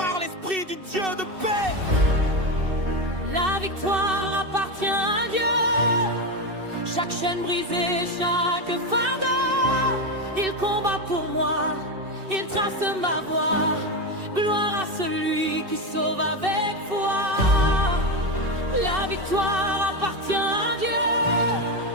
l'esprit du Dieu de paix. La victoire appartient à Dieu. Chaque chaîne brisée, chaque fardeau, il combat pour moi, il trace ma voie. Gloire à celui qui sauve avec foi. La victoire appartient à Dieu.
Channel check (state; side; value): late; left; 2.6 ms